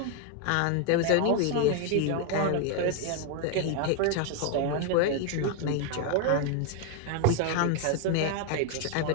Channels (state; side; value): different; both; correlation 0.01